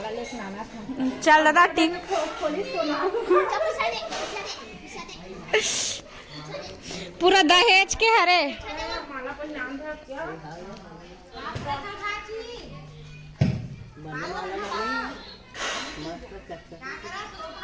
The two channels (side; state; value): both; identical; correlation 1.00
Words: चल दादा टिक पूरा दहेज के हरे।